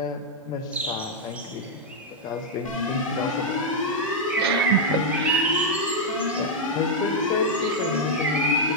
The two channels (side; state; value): both; normal; correlation -0.02